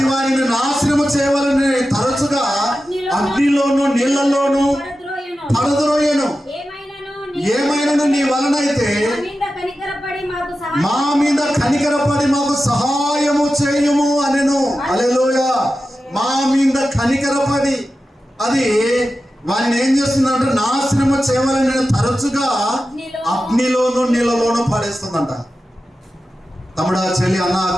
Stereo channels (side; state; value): both; normal; correlation 0.93